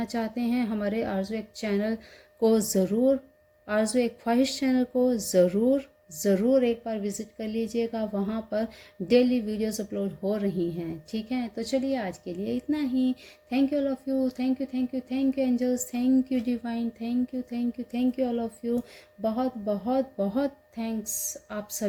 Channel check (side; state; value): both; identical; correlation 1.00